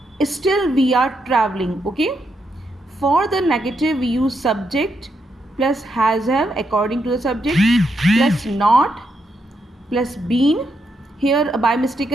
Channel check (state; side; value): normal; both; correlation 0.80